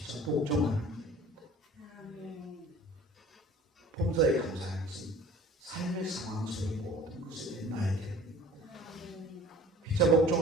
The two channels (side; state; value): both; normal; correlation 0.46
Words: 복종하는 일입니다. 범사에 감사하는 것은 삶의 상황 속의 모든 것에 대한 나의 태도입니다. 피차